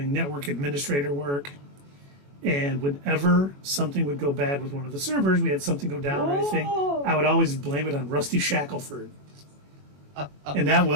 network administrator work. And whenever something would go bad with one of the servers, we had something go down or anything, I would always blame it on Rusty Shackelford. And that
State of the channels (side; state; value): left; late; 21 ms